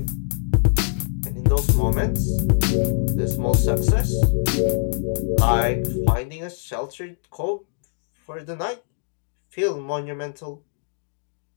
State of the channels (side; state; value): right; silent; digital silence